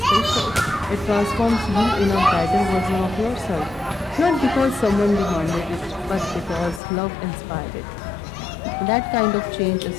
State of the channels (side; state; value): right; drops out; at 6.8 s